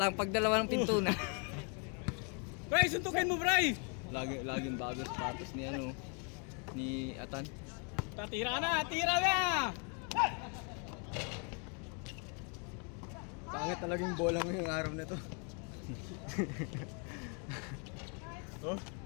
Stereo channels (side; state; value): right; quieter; 37.5 dB